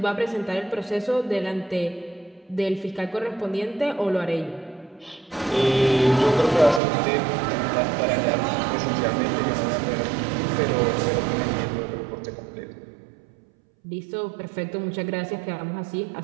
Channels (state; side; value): drops out; left; at 6.8 s